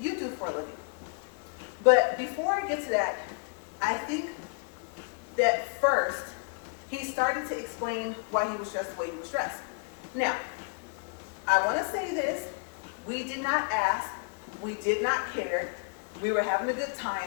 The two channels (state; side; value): quieter; right; 39.0 dB